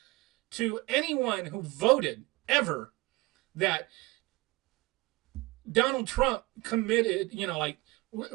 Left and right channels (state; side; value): quieter; left; 22.1 dB